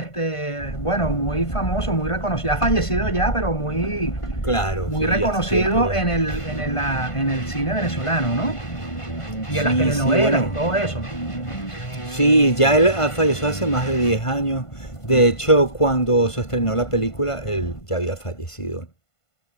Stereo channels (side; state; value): right; late; 1.5 ms